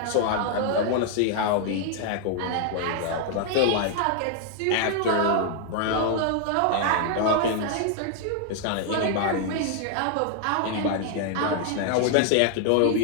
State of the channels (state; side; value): different; both; correlation 0.00